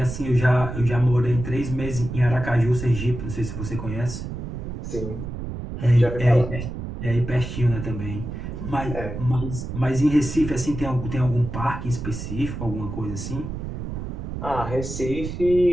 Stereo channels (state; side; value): noise; right; rumble, 7 dB below the sound